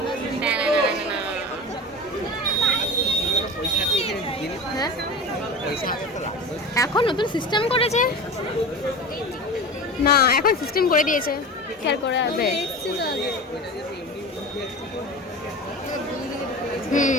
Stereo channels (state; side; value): normal; both; correlation 0.31